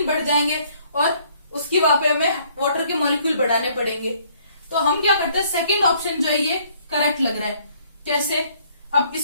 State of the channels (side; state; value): both; inverted; correlation -0.62